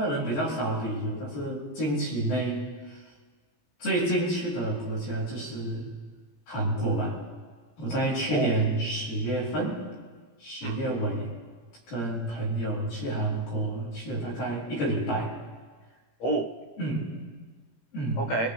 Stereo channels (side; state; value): right; late; 17 ms